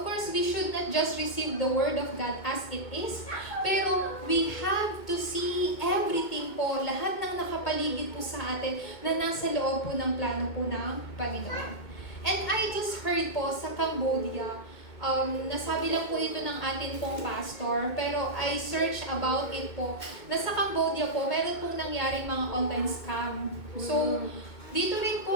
course, we should not just receive the Word of God as it is, pero we have to see everything po, lahat ng nakapaligid po sa atin na nasa loob po ng plano po ng Panginoon. And I just heard po sa Cambodia, nasabi lang po ito ng atin pong pastor, pero I searched about it po, na sa Cambodia po, meron pong nangyaring mga online scam. So, dito rin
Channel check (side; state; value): right; late; 2.2 ms